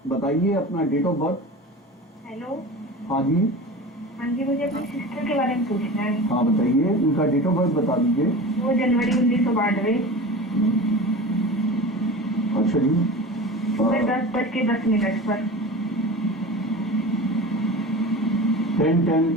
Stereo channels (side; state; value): both; normal; correlation 0.33